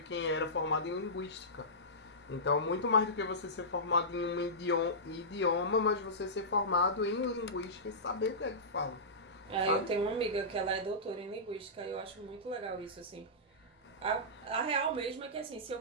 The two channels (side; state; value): both; normal; correlation -0.17